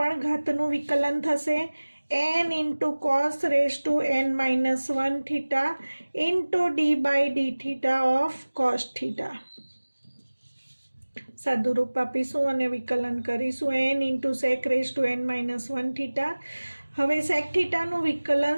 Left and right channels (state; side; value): inverted; both; correlation -1.00